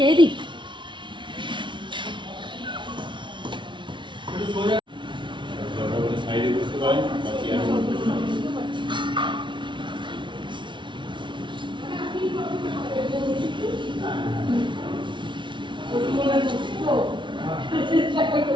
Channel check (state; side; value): late; left; 0.24 ms